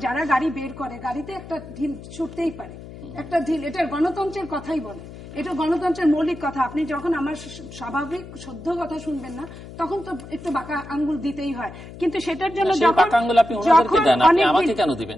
যারা গাড়ি বের করে, গাড়িতে একটা ঢিল ছুটতেই পারে, একটা ঢিল, এটা গণতন্ত্রের কথাই বলে, এটা গণতন্ত্রের মৌলিক কথা। আপনি যখন আমার স্বাভাবিক শুদ্ধ কথা শুনবেন না, তখন তো একটু বাঁকা আঙ্গুল দিতেই হয়, কিন্তু সেটার জন্য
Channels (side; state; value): left; noise; hum, 15 dB below the sound